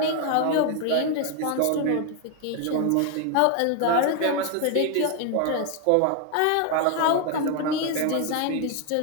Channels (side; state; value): both; different; correlation 0.01